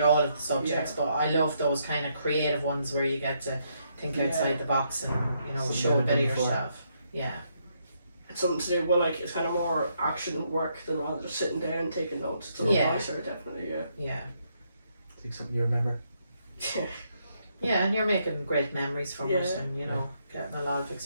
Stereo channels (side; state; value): both; inverted; correlation -0.76